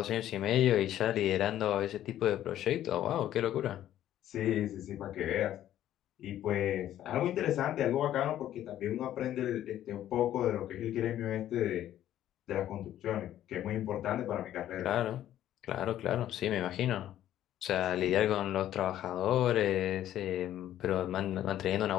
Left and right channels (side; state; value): right; quieter; 12.2 dB